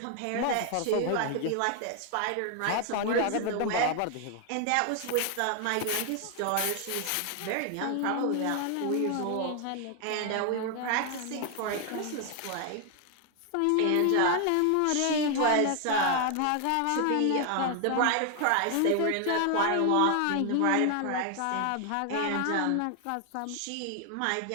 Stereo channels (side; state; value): both; different; correlation 0.00